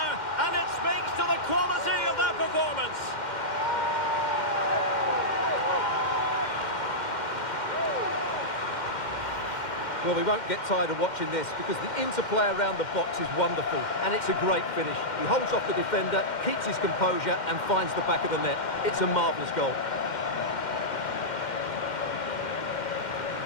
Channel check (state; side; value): late; right; 2.1 ms